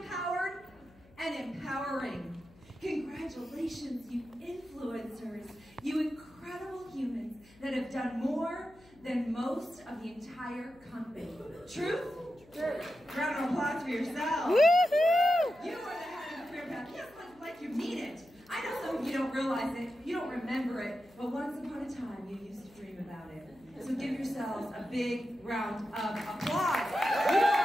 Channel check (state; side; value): noise; left; hum, 26 dB below the sound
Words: and empowering. Congratulations, you influencers, you incredible humans that have done more than most of the entire company. Truth? True. Round of applause for yourselves. Woohoo! You are the head of the career path. Yes, like you mean it. I know some of you don't realize it, you don't remember it, but once upon a time you used to dream about it. So give yourselves a big round of applause.